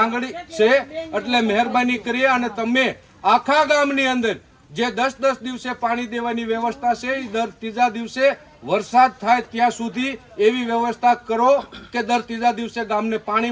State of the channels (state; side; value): identical; both; correlation 1.00